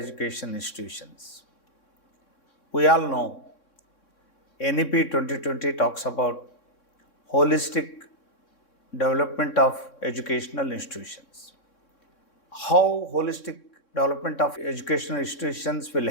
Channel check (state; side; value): late; right; 3.6 ms